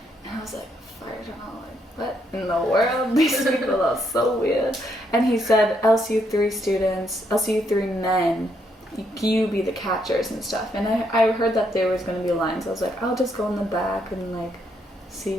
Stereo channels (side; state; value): both; normal; correlation 0.75